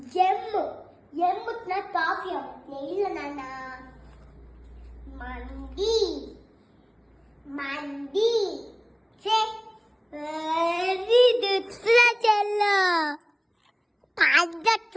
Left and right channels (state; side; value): identical; both; correlation 1.00